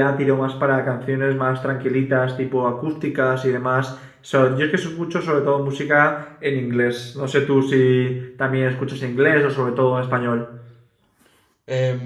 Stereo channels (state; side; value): identical; both; correlation 1.00